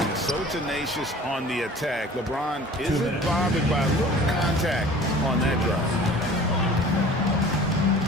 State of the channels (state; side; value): normal; both; correlation 0.45